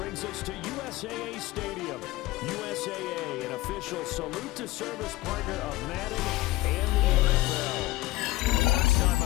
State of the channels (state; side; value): quieter; right; 18.6 dB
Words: us to USAA Stadium. USAA, an official salute-to-service partner of Madden NFL. Alongside